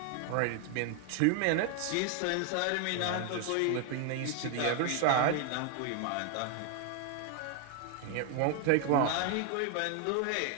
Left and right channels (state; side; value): different; both; correlation 0.01